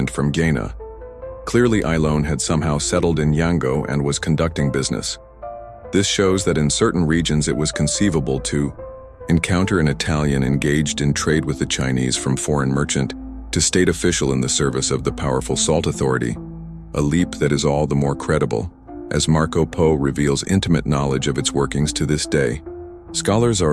from Gaina. Clearly, Ilon had somehow settled in Yangzhou and was conducting business. This shows that in certain regions it was conceivable to encounter an Italian engaged in trade with the Chinese, from foreign merchant to state official in the service of the powerful salt authority, a leap that is all the more credible as Marco Polo reveals intimate knowledge of its workings to this day. Scholars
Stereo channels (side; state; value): both; identical; correlation 1.00